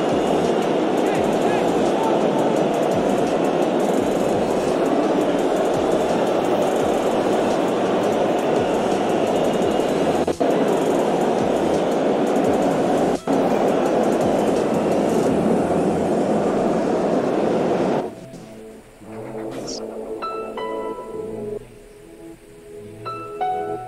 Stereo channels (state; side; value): identical; both; correlation 1.00